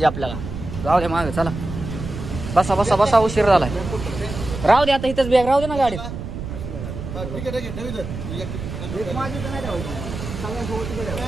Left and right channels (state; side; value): noise; right; rumble, 8 dB below the sound